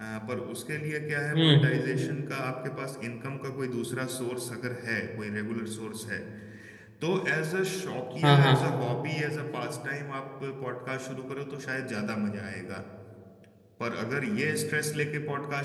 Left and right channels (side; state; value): both; identical; correlation 1.00